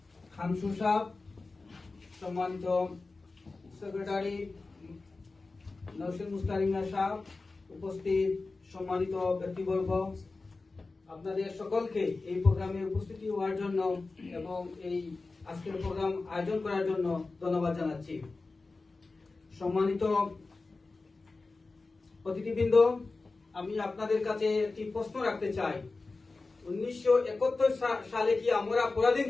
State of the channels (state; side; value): quieter; right; 3.7 dB